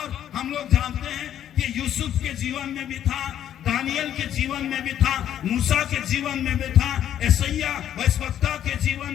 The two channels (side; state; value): right; quieter; 10.6 dB